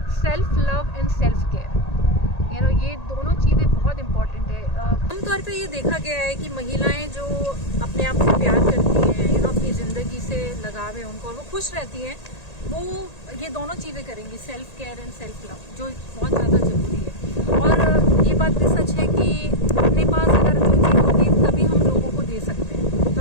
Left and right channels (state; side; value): late; right; 1.8 ms